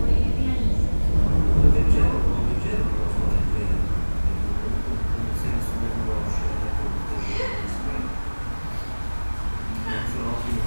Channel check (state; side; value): inverted; both; correlation -1.00